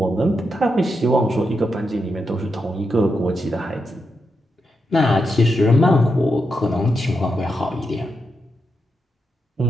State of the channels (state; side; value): normal; both; correlation 0.85